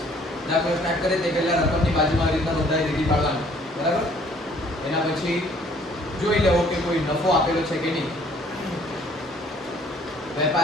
દાખલો સ્ટાર્ટ કરે તે પહેલા રકમની બાજુમાં આવી રીતના નોંધાઈ લીટી પાડવાની. બરાબર? એના પછી જોઈ લેવો કે કોઈ નફો આપેલો છે કે નહીં.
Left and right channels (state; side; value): normal; both; correlation 0.59